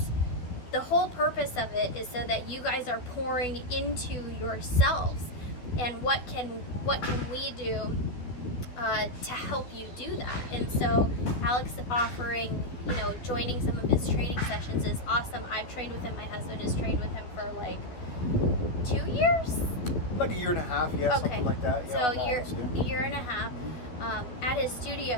the whole purpose of it is so that you guys are pouring into yourselves, and what can we do to help you do that. And so Alex offering, joining some of his training sessions is awesome. I've trained with him. My husband has trained with him for like 2 years, like a year and a half, yeah, okay, something like that. So Yeah, a year and a half at his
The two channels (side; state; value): right; late; 12 ms